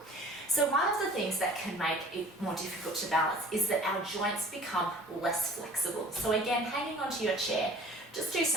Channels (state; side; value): normal; both; correlation 0.49